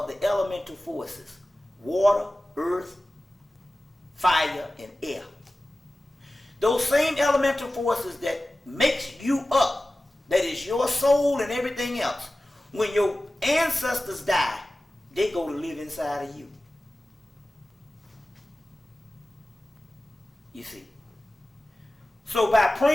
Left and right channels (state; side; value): normal; both; correlation 0.96